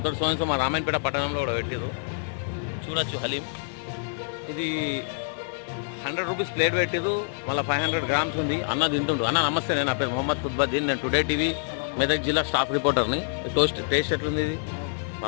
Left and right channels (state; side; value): silent; right; 61 dB below the other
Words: సో మా రామాయణపేట పట్టణంలో కూడా పెట్టారు. చూడొచ్చు హలీం. ఇది 100 రూపీస్ ప్లేట్ పెట్టారు. మళ్ళీ 500 గ్రామ్స్ ఉంది. అన్న తింటుండు. అన్న నమస్తే, నేను నా పేరు మొహమ్మద్ ఖుద్బద్దీన్. నేను టుడే టీవీ మెదక్ జిల్లా స్టాఫ్ రిపోర్టర్ని. టేస్ట్ ఎట్లుంది? ఇది